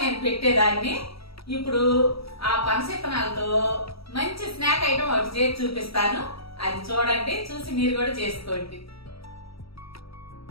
నేను పెట్టేదాన్ని. ఇప్పుడు ఆ పనస ఇత్తనాలతో మంచి స్నాక్ ఐటమ్ ఒకటి చేసి చూపిస్తాను. అది చూడండి, చూసి మీరు కూడా చేసుకోండి.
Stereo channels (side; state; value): right; late; 0.76 ms